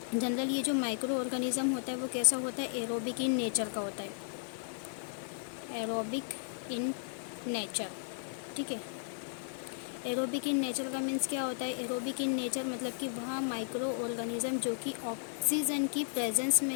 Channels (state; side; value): silent; right; 55 dB below the other